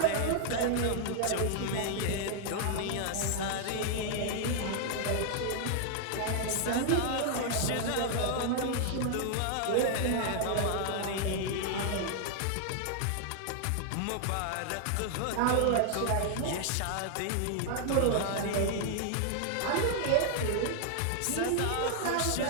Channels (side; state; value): both; different; correlation 0.00